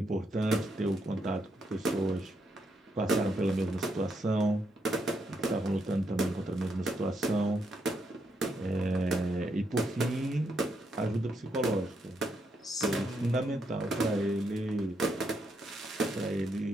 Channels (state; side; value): normal; both; correlation 0.79